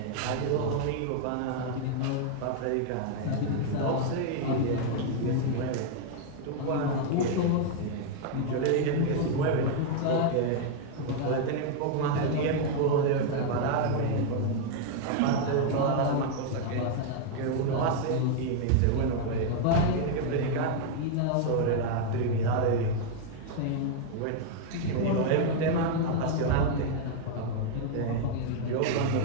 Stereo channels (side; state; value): both; different; correlation 0.00